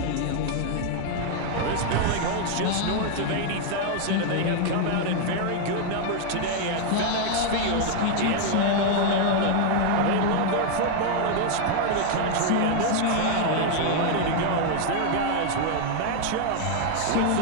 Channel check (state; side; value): different; both; correlation 0.00